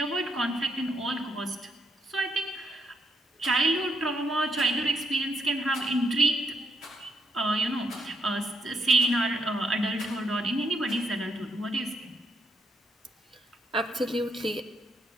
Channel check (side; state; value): both; normal; correlation 0.76